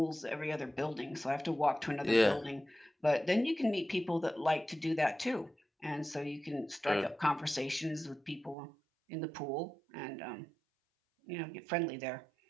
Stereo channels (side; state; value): left; drops out; at 8.6 s